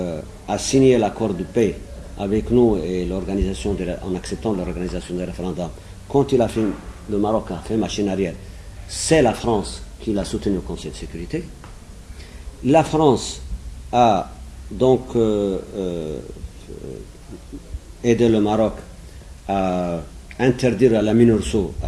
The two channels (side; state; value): both; identical; correlation 1.00